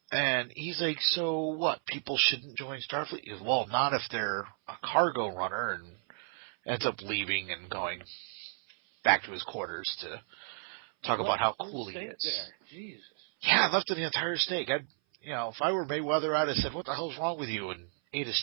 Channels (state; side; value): silent; left; 56 dB below the other